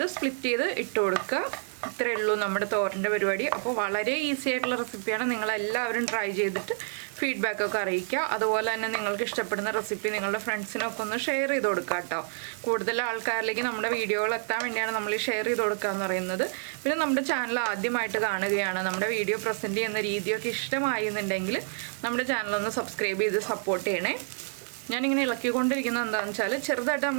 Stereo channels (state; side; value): silent; left; digital silence